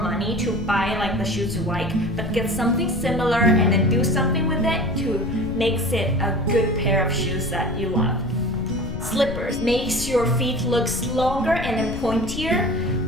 to buy like the shoes you like, but get something similar and then do something with it to makes it a good pair of shoes that you love. Slippers makes your feet look longer and then pointier.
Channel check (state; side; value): noise; left; rumble, 9 dB below the sound